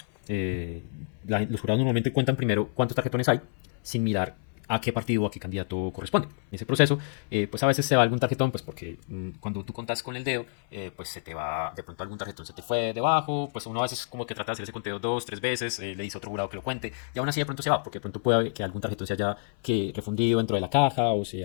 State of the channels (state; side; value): silent; right; 59 dB below the other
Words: Los jurados normalmente cuentan primero cuántos tarjetones hay, sin mirar a qué partido o a qué candidato corresponde. En ese proceso, pues a veces se va algún tarjetón, pues porque cuando tú contas con el dedo, pues se te va, de pronto algún tarjetón se te fue debajo, pues uno a veces como que trata de hacer ese conteo 2, 3 veces, le dice a otro jurado que lo cuente, y aún así de pronto se va, porque de pronto puede haber que algún tarjetón se haya refundido dentro de la caja, o